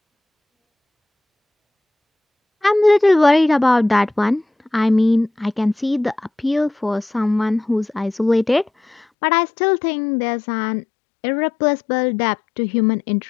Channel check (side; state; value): right; drops out; at 9.1 s